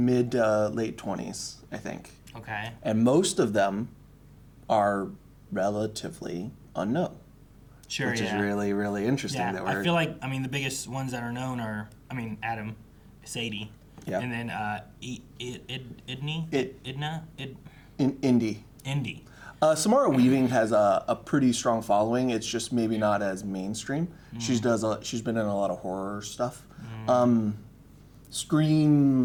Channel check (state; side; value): identical; both; correlation 1.00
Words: to late 20s, I think. okay. And most of them are relatively unknown. Sure, Which yeah. is really, really interesting. Yeah, That we're, I feel like, I mean, the biggest ones that are known are, I mean, Adam, Sadie, Yeah. and then Idney? Idna? in indie. Indy. Samara Weaving has a pretty strong following. It's just maybe not as mainstream. She's been in a lot of horror stuff.